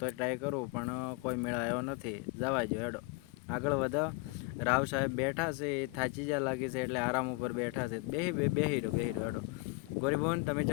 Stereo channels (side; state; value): right; quieter; 26.6 dB